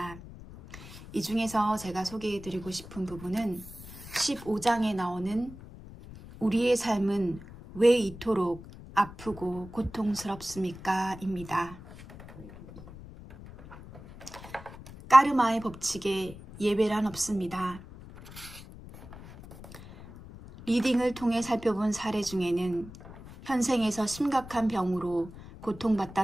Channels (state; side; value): noise; left; rumble, 16 dB below the sound